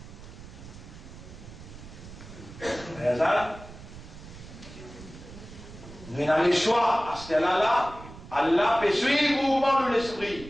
nous avons le choix à ce terrain-là. Allah peut suivre le mouvement de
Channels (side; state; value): right; noise; rumble, 16 dB below the sound